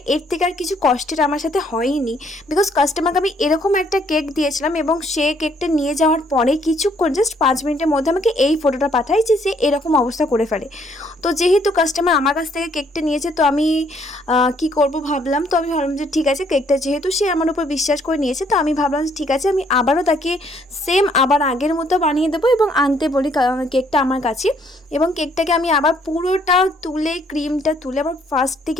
এর থেকে আর কিছু কষ্টের আমার সাথে হয়নি। বিকজ কাস্টমারকে আমি এরকম একটা কেক দিয়েছিলাম এবং সে কেকটা নিয়ে যাওয়ার পরে কিছুক্ষণ, জাস্ট 5 মিনিটের মধ্যে আমাকে এই ফটোটা পাঠায় যে সে এরকম অবস্থা করে ফেলে। তো যেহেতু কাস্টমার আমার কাছ থেকে কেকটা নিয়েছে, তো আমি কি করব ভাবলাম। তো আমি ভাবলাম যে ঠিক আছে, কেকটা যেহেতু সে আমার উপর বিশ্বাস করে নিয়েছে, তো আমি ভাবলাম যে ঠিক আছে, আমি আবারও তাকে সেম আবার আগের মতো বানিয়ে দেবো এবং আনতে বলি কেকটা আমার কাছে। এবং কেকটাকে আমি আবার পুরোটা তুলে, ক্রিমটা তুলে আবার ফার্স্ট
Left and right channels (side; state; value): both; normal; correlation 0.66